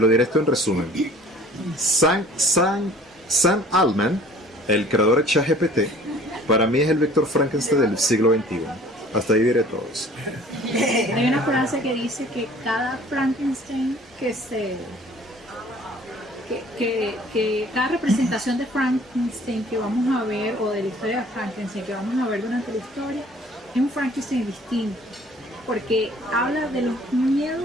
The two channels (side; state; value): both; normal; correlation 0.52